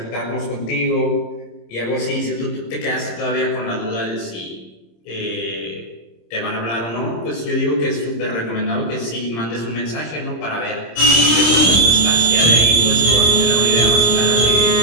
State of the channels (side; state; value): right; late; 26 ms